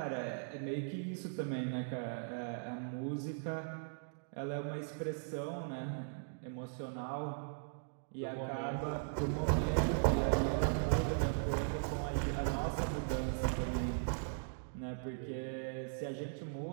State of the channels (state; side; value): silent; left; digital silence